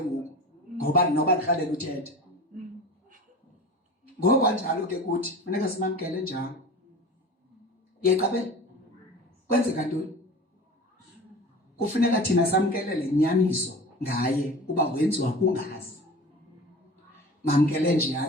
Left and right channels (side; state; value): both; normal; correlation 0.36